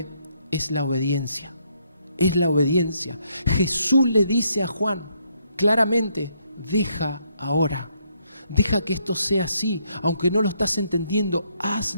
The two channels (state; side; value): inverted; both; correlation -0.74